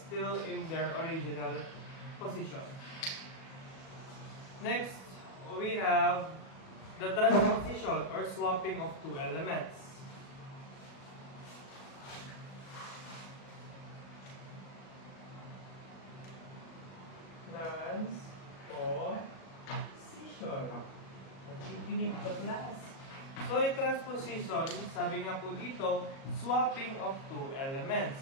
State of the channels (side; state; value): right; late; 37 ms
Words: in their original position. Next, we have the transposition or swapping of two elements. Transposition. Nakikinig ka, class. So, yung transposition, sabi nga po dito, swapping of two